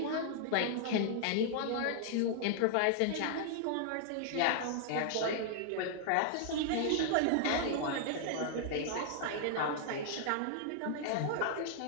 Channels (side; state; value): both; different; correlation -0.01